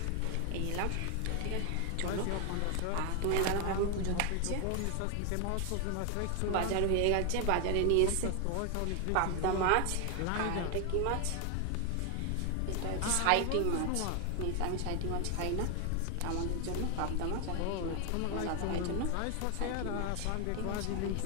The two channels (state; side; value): different; both; correlation 0.01